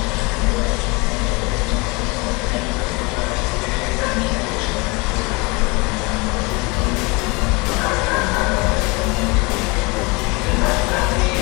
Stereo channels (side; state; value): right; quieter; 27.2 dB